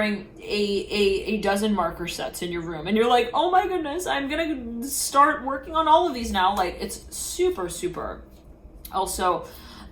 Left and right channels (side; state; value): both; identical; correlation 1.00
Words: a dozen marker sets in your room, and you're like, oh my goodness, I'm gonna start working on all of these now. Like it's super, super. Also,